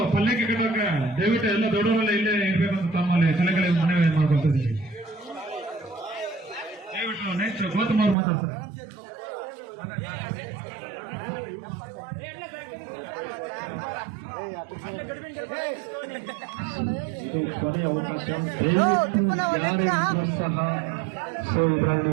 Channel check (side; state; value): left; drops out; at 8.2 s